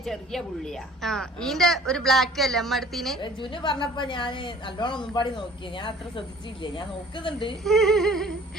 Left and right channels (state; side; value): normal; both; correlation 0.50